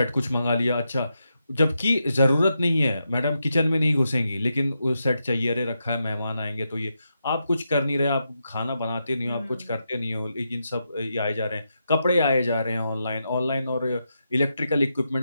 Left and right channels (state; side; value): inverted; both; correlation -0.85